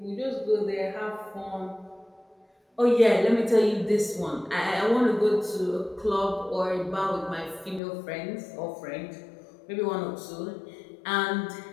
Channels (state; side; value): drops out; right; at 7.8 s